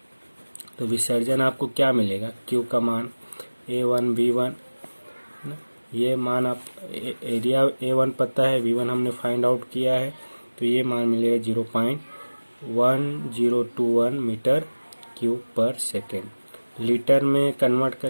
तो विसर्जन आपको क्या मिलेगा, Q का मान A1 B1, ये मान आप एरिया A1 पता है, V1 हमने फाइंड आउट किया है तो ये मान मिलेगा 0.1021 मीटर क्यूब पर सेकेंड। लीटर में कन्वर्ट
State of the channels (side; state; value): both; inverted; correlation -1.00